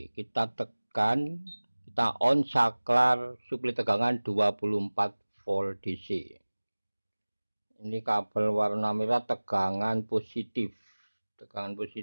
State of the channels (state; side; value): inverted; both; correlation -1.00